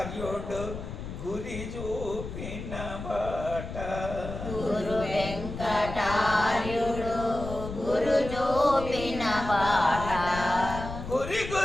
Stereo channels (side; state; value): left; noise; rumble, 8 dB below the sound